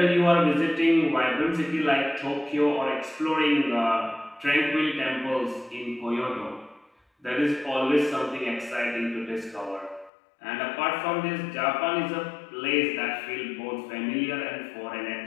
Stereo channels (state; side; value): drops out; right; at 10.1 s